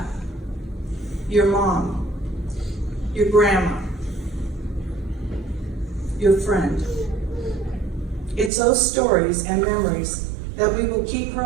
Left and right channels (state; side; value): drops out; left; at 8.5 s